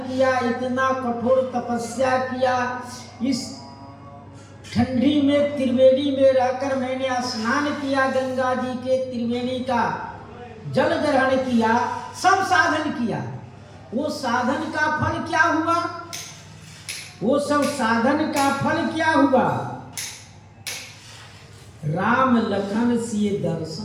इतना कठोर तपस्या किया, इस ठंडी में त्रिवेणी में रहकर मैंने स्नान किया, गंगा जी के त्रिवेणी का जल ग्रहण किया, सब साधन किया। वो साधन का फल क्या हुआ? वो सब साधन का फल क्या हुआ? राम लखन सिए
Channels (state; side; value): identical; both; correlation 1.00